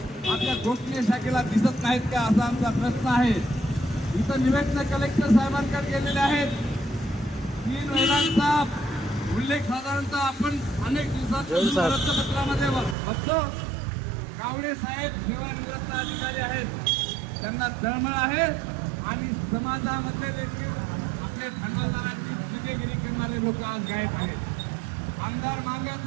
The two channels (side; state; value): left; drops out; at 13.0 s